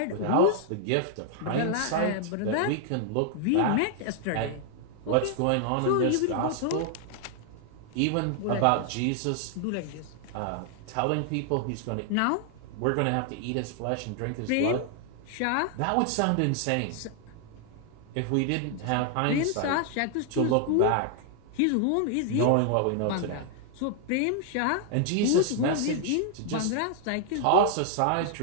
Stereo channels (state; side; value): different; both; correlation 0.00